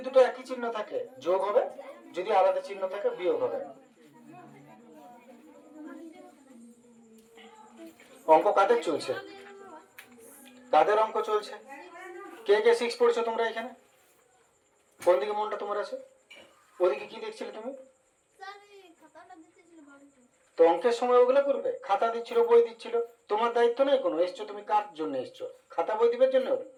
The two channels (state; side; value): identical; both; correlation 1.00